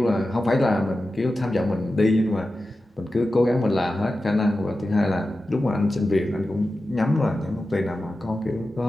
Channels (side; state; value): both; normal; correlation 0.93